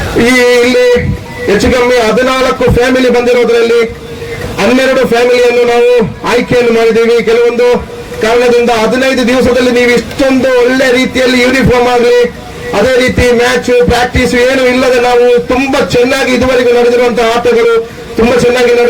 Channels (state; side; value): identical; both; correlation 1.00